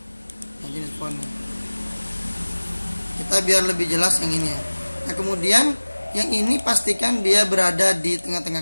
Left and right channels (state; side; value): inverted; both; correlation -1.00